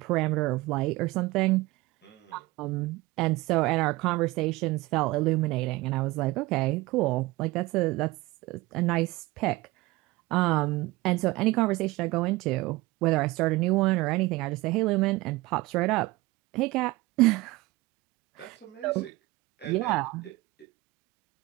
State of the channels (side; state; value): left; quieter; 20.5 dB